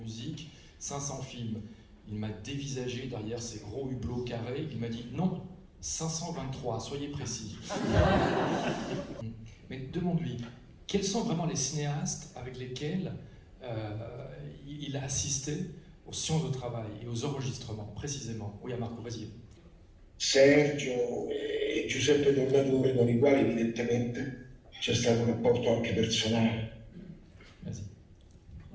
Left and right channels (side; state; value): both; identical; correlation 1.00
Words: 500 films. Il m'a dévisagé derrière ses gros hublots carrés. Il m'a dit non, 523, soyez précis. Mais demande-lui, quels sont vraiment les cinéastes avec lesquels il a assisté aux séances de travail et aux enregistrements, précisément? Oui, à Marco, vas-y. Sergio e Giuseppe Tornatore, con i quali evidentemente c'è stato un rapporto anche personale. Vas-y.